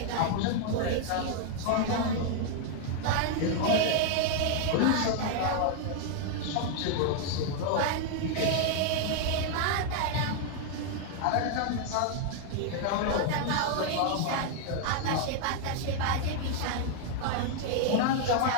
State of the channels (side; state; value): both; different; correlation 0.00